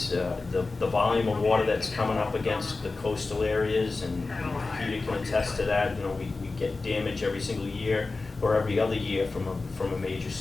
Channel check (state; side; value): quieter; right; 3.7 dB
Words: the volume of water that's coming up against the coastal areas, and Peter can attest to that. We get damage every single year or every other year from a major